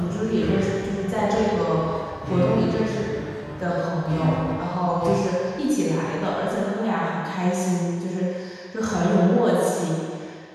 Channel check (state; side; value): identical; both; correlation 1.00